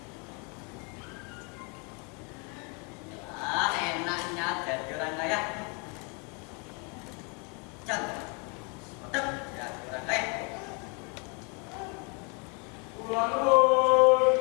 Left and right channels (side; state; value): right; quieter; 34.1 dB